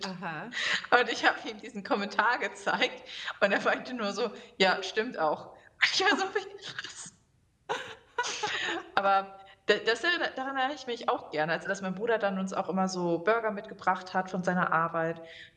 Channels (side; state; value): both; identical; correlation 1.00